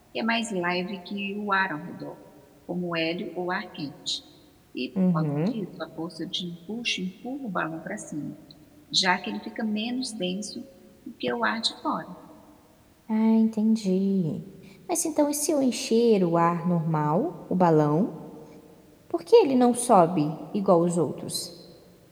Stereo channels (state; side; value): identical; both; correlation 1.00